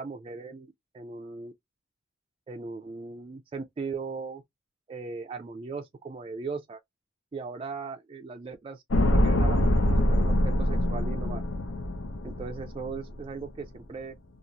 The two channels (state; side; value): normal; both; correlation 0.78